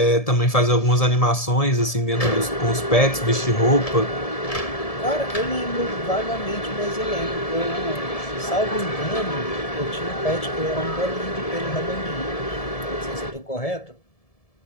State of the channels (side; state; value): right; late; 1.7 ms